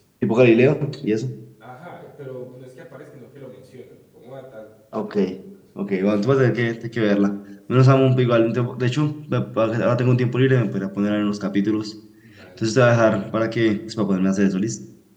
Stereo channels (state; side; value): identical; both; correlation 1.00